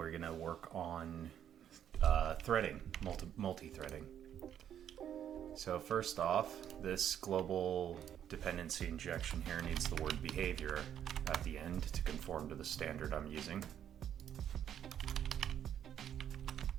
going to work on threading, multi-threading. So first off, this global dependency injection here needs the word behavior at the end to conform to the standard I'm using.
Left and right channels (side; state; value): left; quieter; 9.8 dB